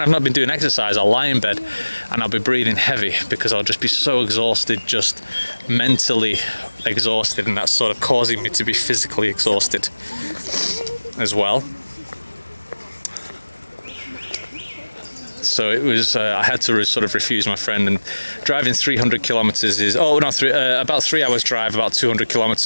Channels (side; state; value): both; inverted; correlation -1.00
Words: I've not been doing exercise, I'll lie in bed and I'll be breathing heavy because I'll just be so exhausted, just mentally exhausted, and that's sort of causing me to be physically exhausted as well. So it was, I had to sort of refuse my friend, and driving 300 kilometers is, about 3 hours drive, about 200